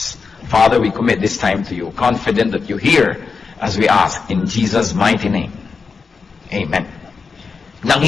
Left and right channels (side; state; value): right; quieter; 5.0 dB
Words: Father, we commit this time to you, confident that you hear as we ask in Jesus' mighty name. Amen.